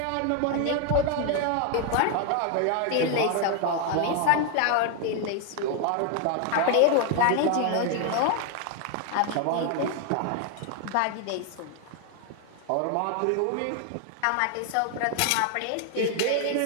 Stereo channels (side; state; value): both; different; correlation 0.01